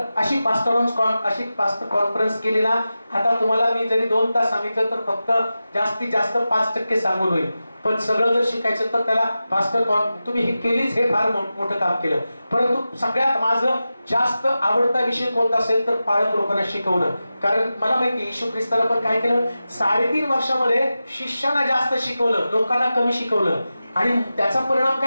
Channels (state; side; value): inverted; both; correlation -0.93